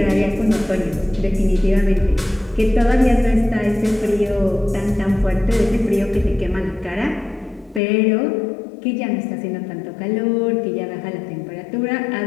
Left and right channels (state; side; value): drops out; right; at 7.8 s